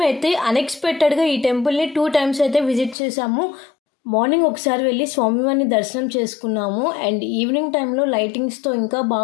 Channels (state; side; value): drops out; right; at 3.0 s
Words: అన్ఎక్స్పెక్టెడ్గా ఈ టెంపుల్ని 2 times అయితే విజిట్ చేసాము. మార్నింగ్ ఒకసారి వెళ్ళి స్వామివారిని దర్శనం చేసుకున్నాము అండ్ ఈవినింగ్ టైంలో లైటింగ్స్తో ఇంకా